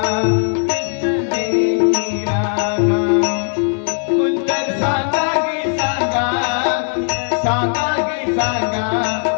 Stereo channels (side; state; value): right; silent; 59 dB below the other